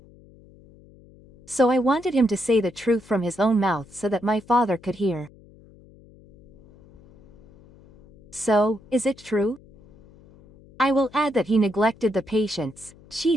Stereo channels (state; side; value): noise; left; hum, 25 dB below the sound